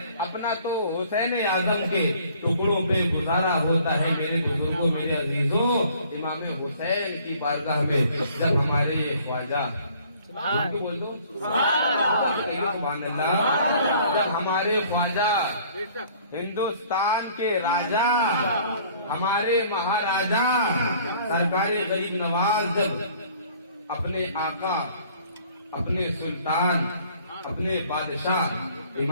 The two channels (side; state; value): both; inverted; correlation -0.56